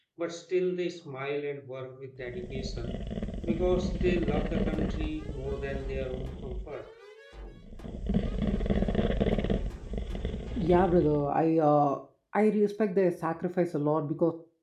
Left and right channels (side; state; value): both; identical; correlation 1.00